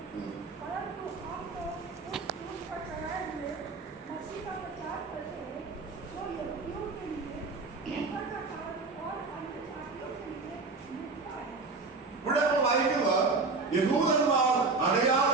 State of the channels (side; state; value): left; quieter; 4.0 dB